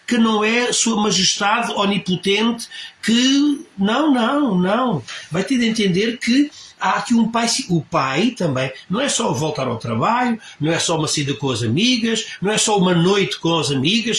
que não é Sua Majestade onipotente, que... Não. Vai ter de entender que há aqui um pai... O pai também não é só voltar ao trabalho, não é só uma saída com as amigas, não é só uma noite com as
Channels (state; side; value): identical; both; correlation 1.00